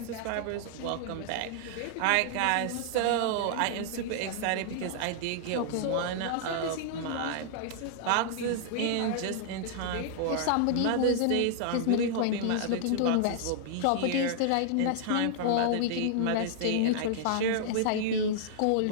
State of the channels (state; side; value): different; both; correlation -0.01